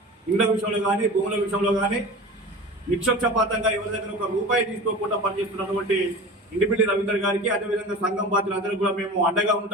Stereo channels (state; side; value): normal; both; correlation 0.35